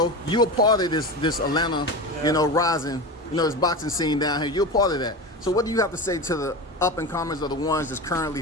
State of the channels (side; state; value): both; normal; correlation 0.25